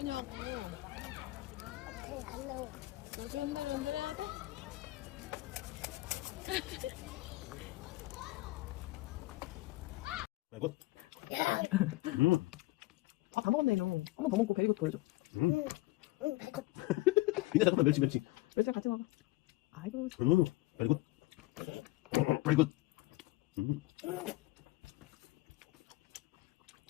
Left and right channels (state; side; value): quieter; right; 19.9 dB